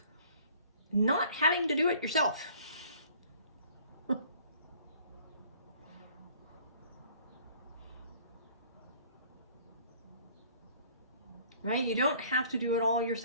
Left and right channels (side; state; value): both; inverted; correlation -0.54